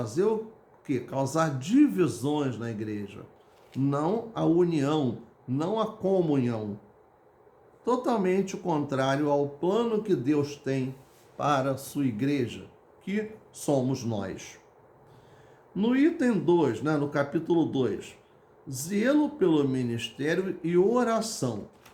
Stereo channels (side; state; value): both; identical; correlation 1.00